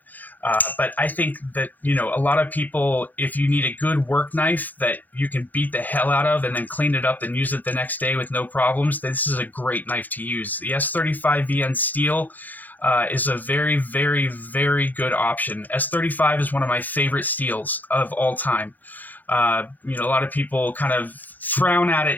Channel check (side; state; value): right; late; 0.084 ms